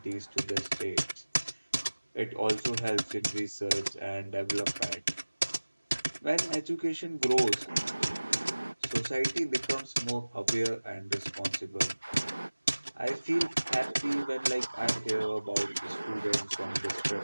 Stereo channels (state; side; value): inverted; both; correlation -1.00